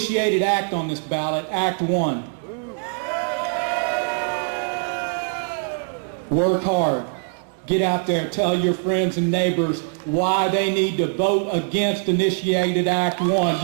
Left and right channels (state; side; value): silent; left; digital silence